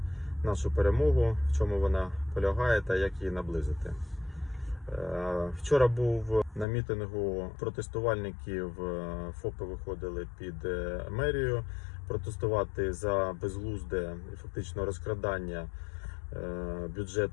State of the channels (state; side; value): drops out; right; at 6.7 s